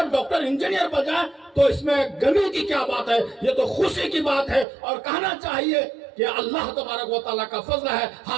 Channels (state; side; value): drops out; left; at 4.7 s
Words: ڈاکٹر، انجینئر بن جائے، تو اس میں غمی کی کیا بات ہے، یہ تو خوشی کی بات ہے۔ اور کہنا چاہیے کہ اللہ تبارک و تعالیٰ کا فضل ہے،